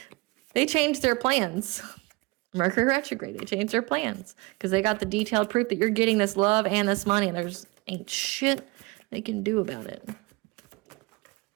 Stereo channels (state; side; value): quieter; left; 24.9 dB